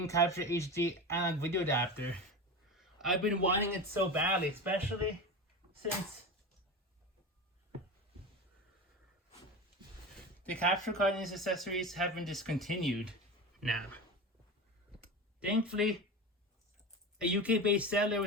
Capture HD analog video adapter. I've been wanting it so badly, especially since the capture card and its accessories have been discontinued now. Thankfully, a UK-based seller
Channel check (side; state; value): both; normal; correlation 0.26